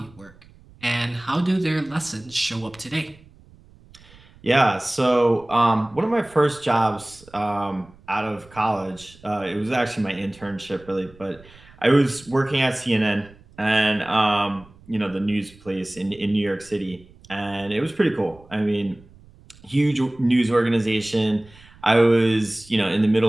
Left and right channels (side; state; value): right; noise; rumble, 25 dB below the sound